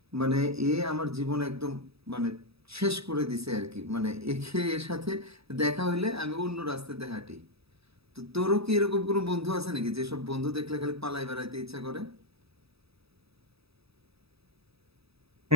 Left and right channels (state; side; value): late; left; 0.77 ms